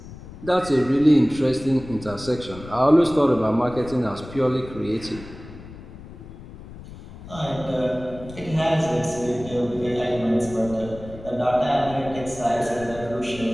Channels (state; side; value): noise; left; rumble, 15 dB below the sound